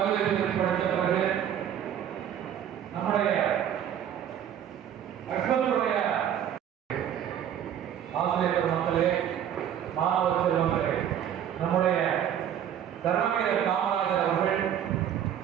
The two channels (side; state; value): left; quieter; 9.8 dB